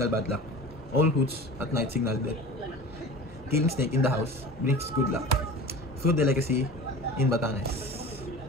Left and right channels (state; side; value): normal; both; correlation 0.37